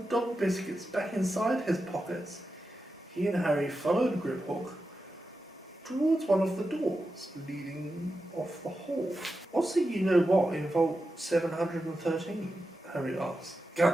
biscuits back inside his pockets, he and Harry followed Griphook towards one of the doors leading off the hall. What's the you-know-what in Vault 713? Harry asked.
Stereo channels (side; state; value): both; normal; correlation 0.90